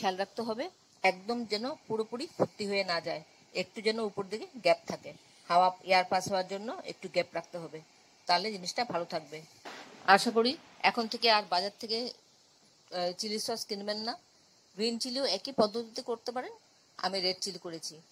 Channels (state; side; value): identical; both; correlation 1.00